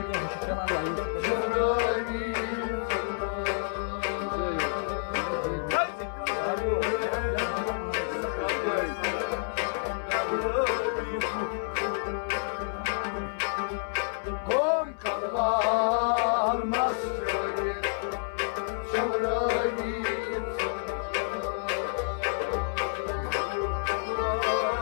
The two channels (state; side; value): silent; right; 58 dB below the other